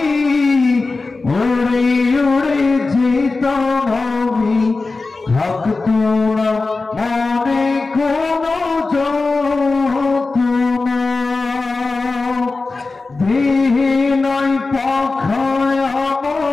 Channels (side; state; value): right; quieter; 3.7 dB